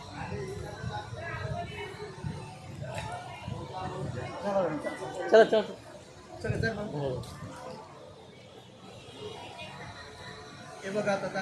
चला चला चला. हे बघा आता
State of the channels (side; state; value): both; identical; correlation 1.00